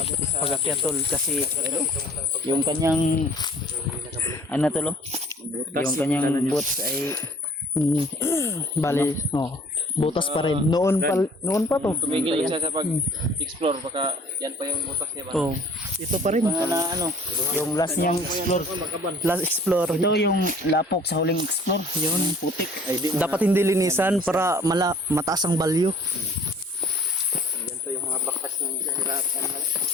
to sa Pag-akyat tol kasi yung kanyang ano tol? Yung kanyang boots ay bali, butas pa rin. Noon pa to. tumigil siya sa pag-explore baka yan pa yung butas niya ba? Oh, ito pa rin na ano, yung last niyang explore. Last explore. Ito yung lapok sa huling explore. Yun, putik. Dapat hindi linisan para mataas ang value. Yan to yung mga bakas ng hirapan na.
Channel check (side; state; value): both; normal; correlation 0.52